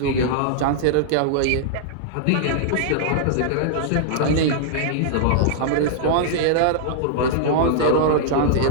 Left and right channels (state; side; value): different; both; correlation -0.02